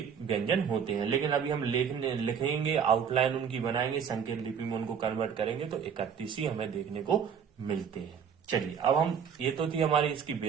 व्यंजन होते हैं। लेकिन अभी हम लिखेंगे, आउटलाइन उनकी बनाएंगे, संकेत लिपि में उनको कन्वर्ट करेंगे तो 31 ही हमें देखने को मिलते हैं। चलिए अब हम, ये तो थी हमारी इसकी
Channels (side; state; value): left; quieter; 7.3 dB